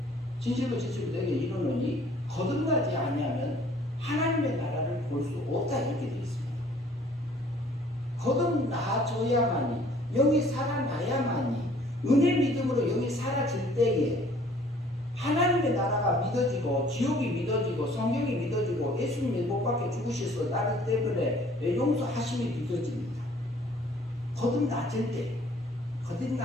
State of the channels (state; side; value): normal; both; correlation 0.56